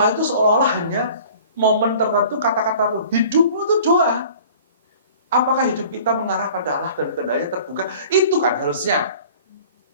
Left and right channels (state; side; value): inverted; both; correlation -0.47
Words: itu seolah-olah hanya momen tertentu, kata-kata tertentu. Hidupmu itu doa. Apakah hidup kita mengarah pada Allah dan kehendaknya terbuka? Itu kan harusnya.